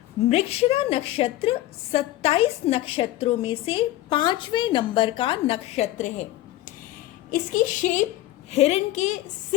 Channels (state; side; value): quieter; right; 15.4 dB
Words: Mrigashira नक्षत्र 27 नक्षत्रों में से 5वें नंबर का नक्षत्र है। इसकी शेप हिरण के